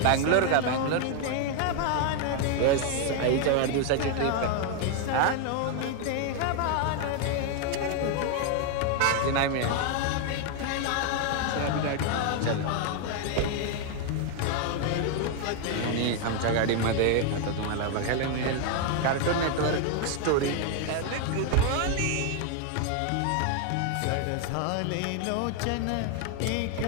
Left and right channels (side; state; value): both; different; correlation 0.00